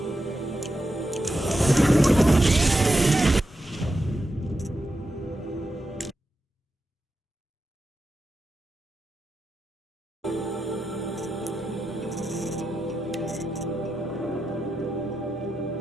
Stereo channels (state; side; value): normal; both; correlation 0.88